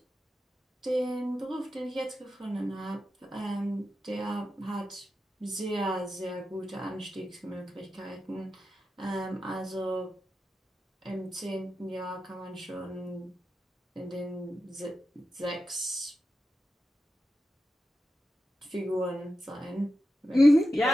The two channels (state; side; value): normal; both; correlation 0.91